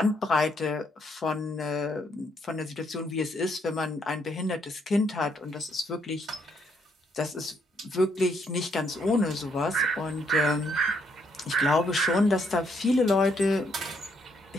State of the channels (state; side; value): normal; both; correlation 0.72